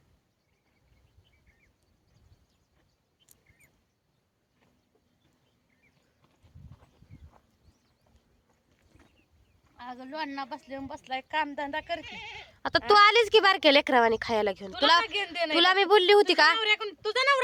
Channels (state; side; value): identical; both; correlation 1.00